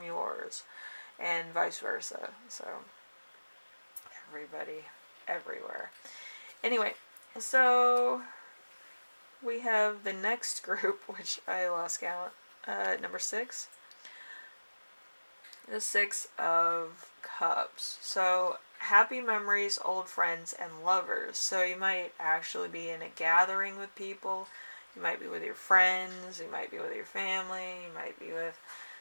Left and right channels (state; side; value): inverted; both; correlation -1.00